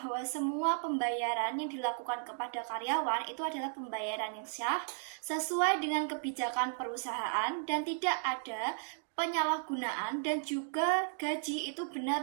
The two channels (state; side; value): silent; left; digital silence